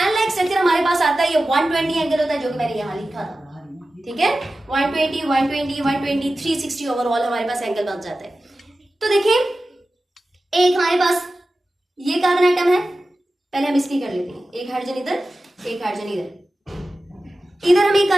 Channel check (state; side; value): normal; both; correlation 0.94